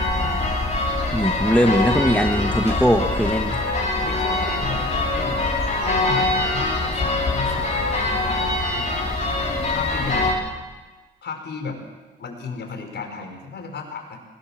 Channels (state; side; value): normal; both; correlation 0.44